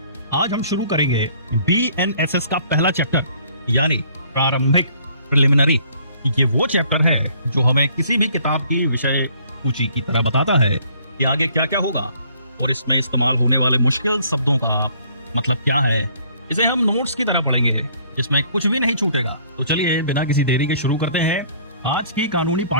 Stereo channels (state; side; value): inverted; both; correlation -0.59